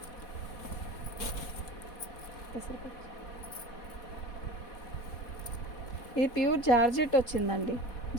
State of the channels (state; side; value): late; right; 4.2 ms